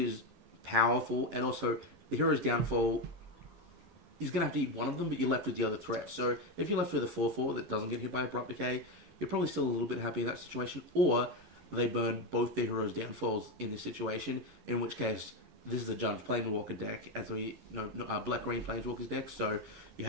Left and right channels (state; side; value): late; left; 11 ms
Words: powerful, and also the Hero's Downfall, he's going to have to eat one of them, but you're left with the other threat. So if you're left with a 4/4 that doesn't get hit by Abrupt Decay, you're probably still a little bit happy in that situation, or they burn both their Hero's Downfalls in this situation, in which case this is a Jund Planeswalker deck, as we know, black-green Planeswalkers deck, so you're